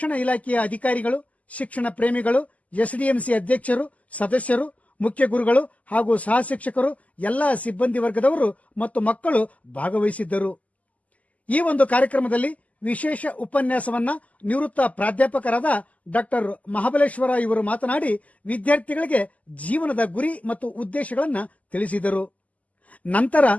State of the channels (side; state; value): right; late; 0.072 ms